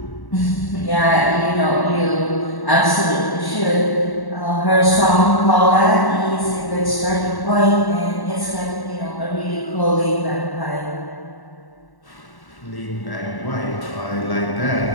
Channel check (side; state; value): right; late; 1.1 ms